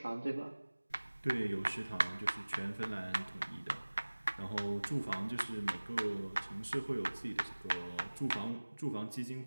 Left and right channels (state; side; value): inverted; both; correlation -1.00